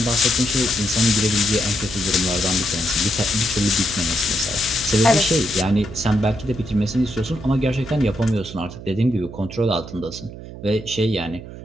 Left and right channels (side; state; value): right; noise; hum, 13 dB below the sound